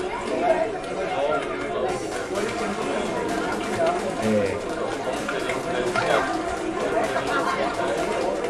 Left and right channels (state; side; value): identical; both; correlation 1.00